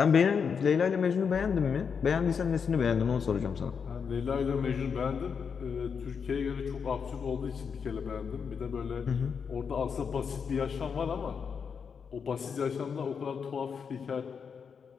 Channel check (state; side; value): quieter; right; 6.3 dB